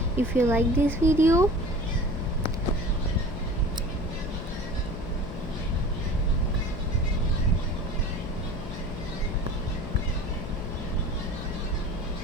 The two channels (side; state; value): left; noise; hum, 9 dB below the sound